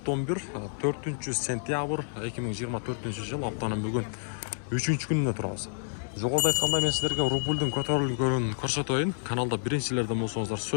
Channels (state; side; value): silent; right; 58 dB below the other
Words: 4-сентябрь 2024-жыл, аптанын бүгүн 3-күнүнө турабыз. Жогоруда айткандай, мен силерге рубльдун көтөрүлгөнүн көрсөтөйүн. Каналда биринчилерден болсоңуздар